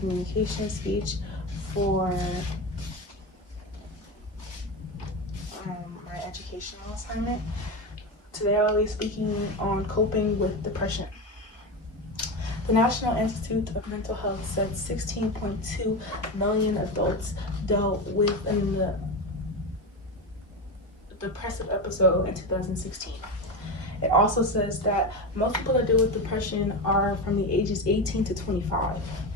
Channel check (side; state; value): right; late; 1.3 ms